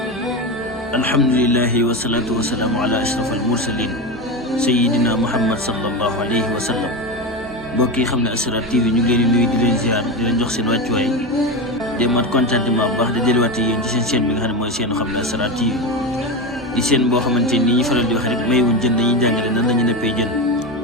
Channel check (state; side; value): noise; right; hum, 21 dB below the sound